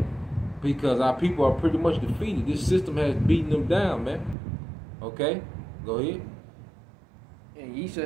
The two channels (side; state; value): left; drops out; at 4.4 s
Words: Because our people are pretty much defeated. This system has beaten them down, man. Go ahead. And ye